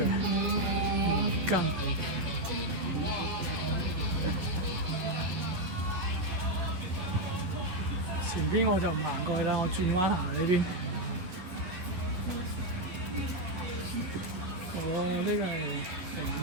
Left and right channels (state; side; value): late; left; 11 ms